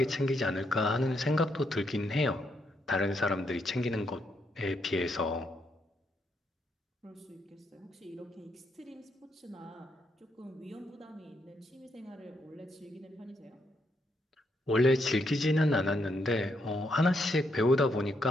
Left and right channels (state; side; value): normal; both; correlation 0.77